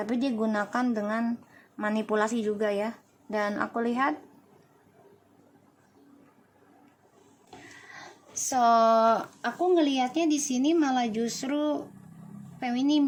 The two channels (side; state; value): both; identical; correlation 1.00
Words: dia gunakan dengan manipulasi juga ya. Dan aku lihat aku ngelihatnya di sini malah justru feminim